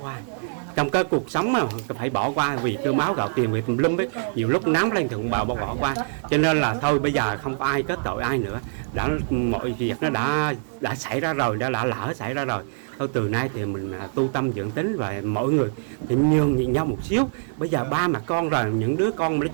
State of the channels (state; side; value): silent; left; 62 dB below the other